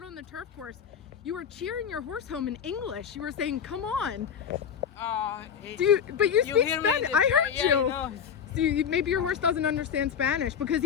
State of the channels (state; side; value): quieter; right; 7.7 dB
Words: on the turf course. You were cheering your horse home in English. You were saying, come on. But you speak Spanish. I heard you. No. So maybe your horse doesn't understand Spanish because